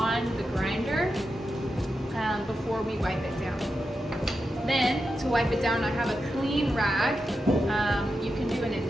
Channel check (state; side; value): normal; both; correlation 0.89